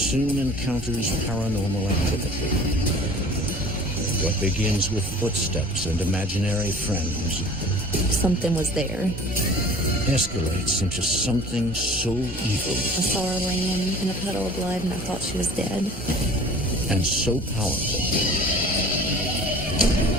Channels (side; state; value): both; normal; correlation 0.45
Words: encounters paranormal activity. What begins with footsteps and imaginary friends Something was there. escalates into something so evil I saw her laying in a puddle of blood and I thought she was dead. and so powerful